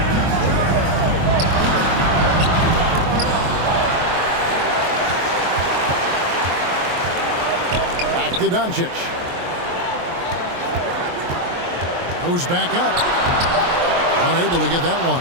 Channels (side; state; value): left; late; 23 ms